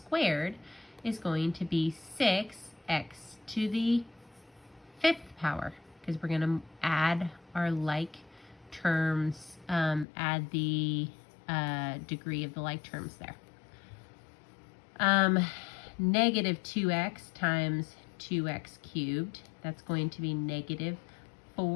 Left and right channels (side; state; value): right; drops out; at 10.1 s